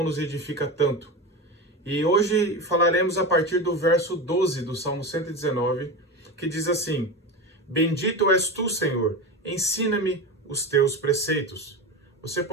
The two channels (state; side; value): normal; both; correlation 0.23